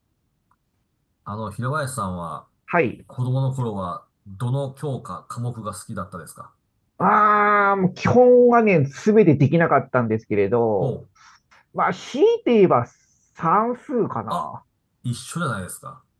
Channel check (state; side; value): identical; both; correlation 1.00